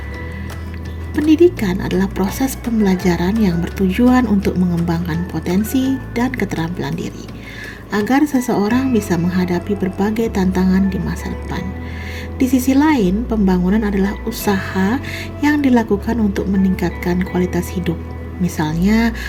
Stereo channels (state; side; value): identical; both; correlation 1.00